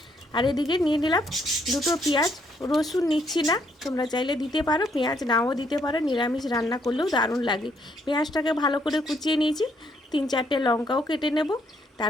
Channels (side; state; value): both; normal; correlation 0.71